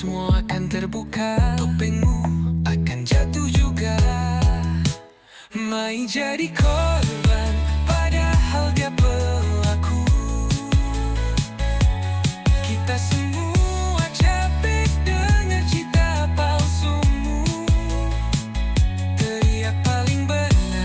akan terbuka, topengmu akan jatuh juga. Main jadi korban, padahal dia pelaku. Kita semua capek dengar cerita palsumu. Teriak paling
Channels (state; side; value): identical; both; correlation 1.00